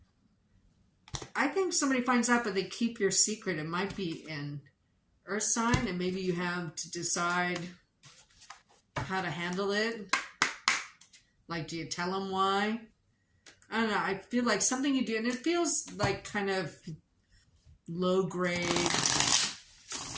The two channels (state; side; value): identical; both; correlation 1.00